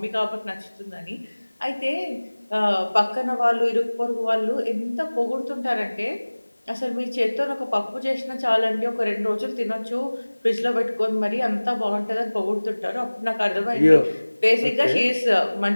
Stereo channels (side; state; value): both; inverted; correlation -1.00